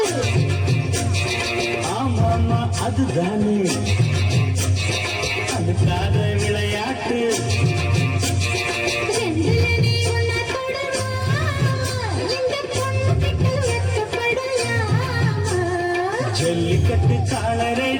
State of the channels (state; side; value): identical; both; correlation 1.00